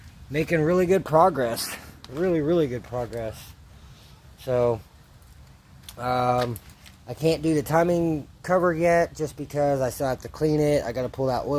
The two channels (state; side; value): identical; both; correlation 1.00